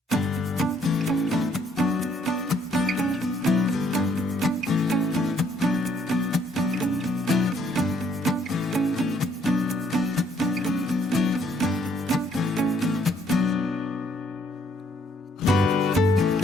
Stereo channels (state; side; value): normal; both; correlation 0.67